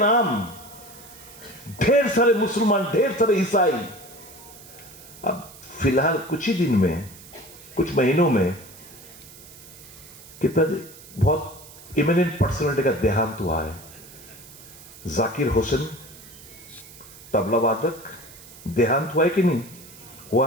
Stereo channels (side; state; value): right; noise; hiss, 19 dB below the sound